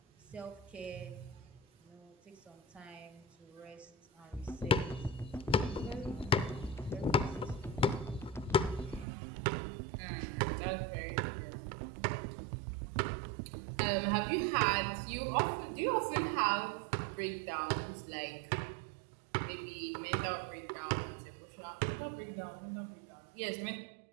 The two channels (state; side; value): drops out; left; at 9.1 s